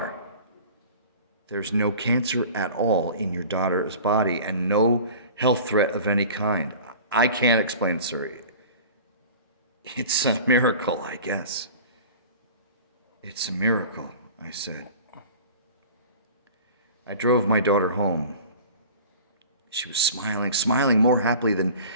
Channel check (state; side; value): inverted; both; correlation -0.41